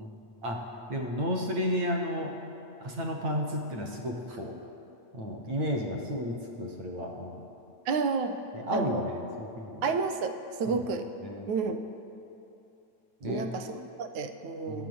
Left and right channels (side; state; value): left; late; 8.9 ms